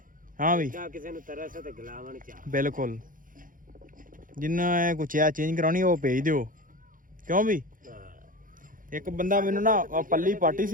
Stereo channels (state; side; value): late; left; 0.39 ms